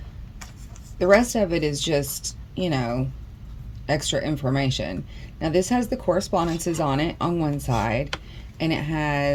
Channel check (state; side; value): identical; both; correlation 1.00